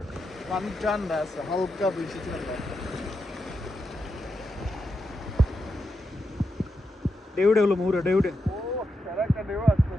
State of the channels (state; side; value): normal; both; correlation 0.86